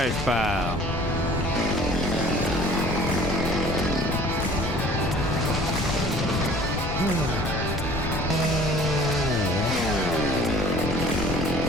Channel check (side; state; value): left; noise; rumble, 4 dB below the sound